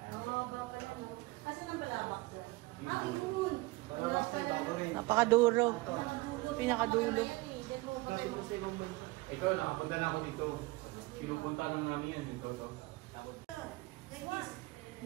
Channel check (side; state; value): left; quieter; 22.1 dB